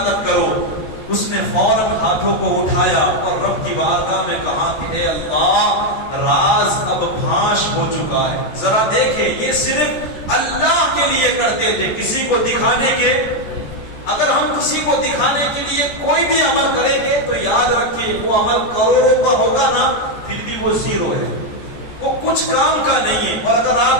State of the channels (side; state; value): right; late; 14 ms